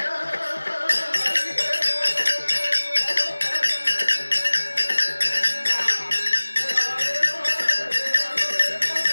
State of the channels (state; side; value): inverted; both; correlation -1.00